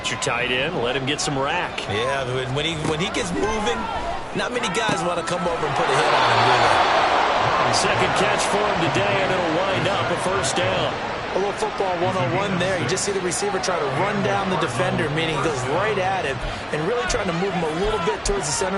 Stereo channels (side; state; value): both; identical; correlation 1.00